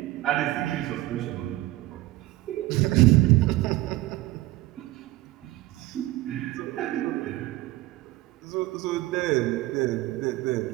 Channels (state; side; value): quieter; left; 17.5 dB